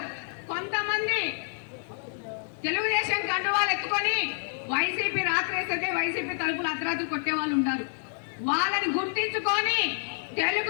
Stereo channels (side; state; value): right; silent; digital silence